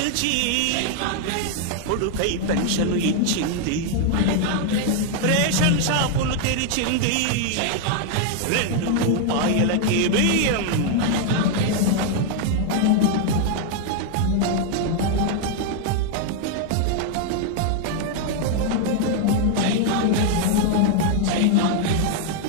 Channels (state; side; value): different; both; correlation 0.00